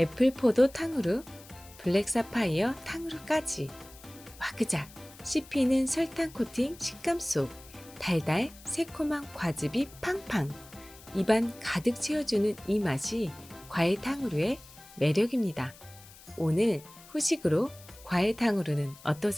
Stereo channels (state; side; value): noise; left; hiss, 21 dB below the sound